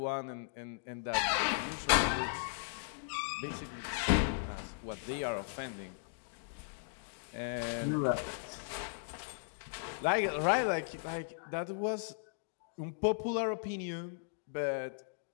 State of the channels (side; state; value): right; silent; digital silence